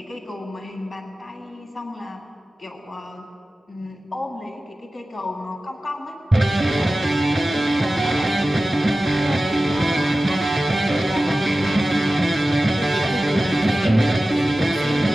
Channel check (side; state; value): both; normal; correlation 0.95